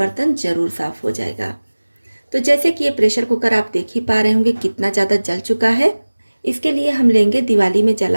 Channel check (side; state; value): both; inverted; correlation -1.00